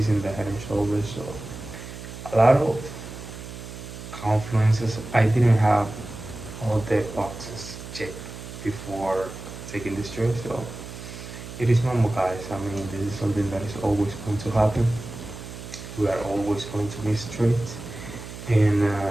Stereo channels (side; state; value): right; noise; hum, 12 dB below the sound